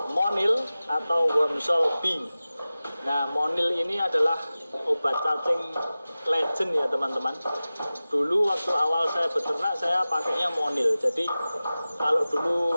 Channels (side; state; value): both; inverted; correlation -0.97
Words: Monil atau Wormsol B. Nah, Monil ini adalah obat cacing legend ya teman-teman. Dulu waktu awal saya beternak saya pakainya Monil. Jadi kalau